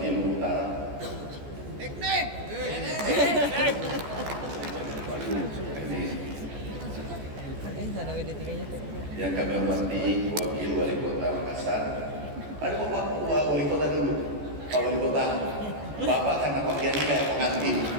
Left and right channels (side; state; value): left; late; 14 ms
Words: Lubu Utara. Yang kami hormati Wakil Wali Kota Makassar. Ada Bapak Wali Kota dulu. Pak Wali Kota. Bapak karena pakaiannya kayak pengantin.